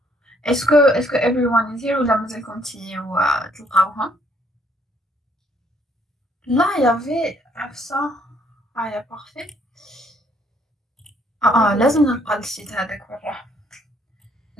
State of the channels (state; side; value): normal; both; correlation 0.66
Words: Est-ce que everyone is here ou la مازال كنتي تلقاوها؟ Là, il y avait ça. Ah, il y a parfait. لازم نلقى السيت هذاك برا